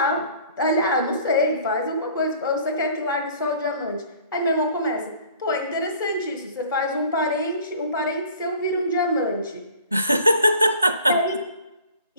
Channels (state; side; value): inverted; both; correlation -0.51